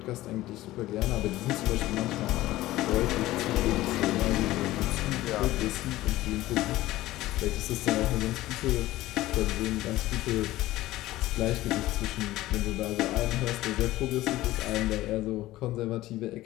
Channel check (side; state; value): right; quieter; 16.5 dB